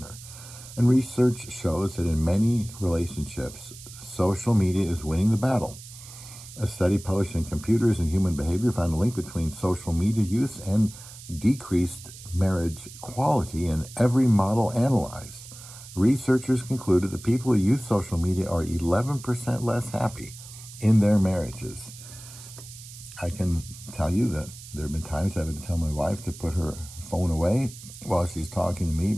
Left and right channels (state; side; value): noise; right; hiss, 16 dB below the sound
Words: And research shows that in many relationships, social media is winning the battle. A study published in Computers and Human Behavior found a link between social media use and decreased marriage quality in every model analyzed. Researchers concluded that people who use social media are 11% less happy in their marriages. I can tell you that there have been times I've had to tell my wife to put her phone away while she's talking to me